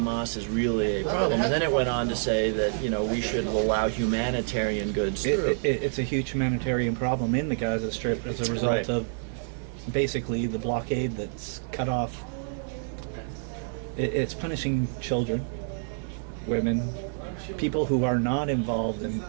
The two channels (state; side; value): silent; left; digital silence